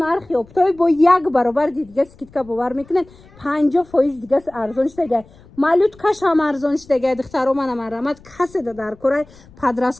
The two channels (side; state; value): left; noise; rumble, 25 dB below the sound